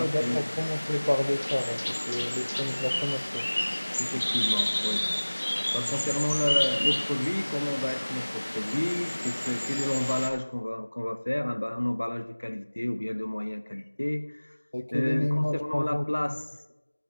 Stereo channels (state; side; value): inverted; both; correlation -1.00